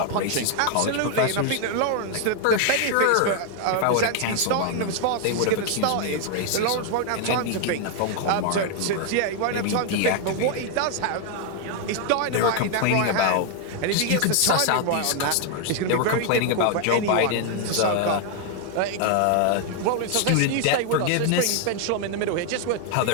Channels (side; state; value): both; different; correlation 0.00